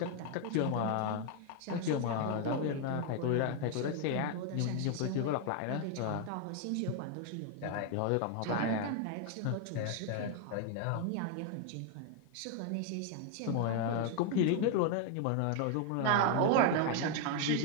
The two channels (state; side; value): different; both; correlation 0.00